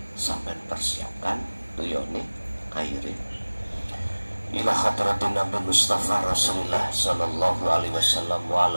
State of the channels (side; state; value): both; inverted; correlation -1.00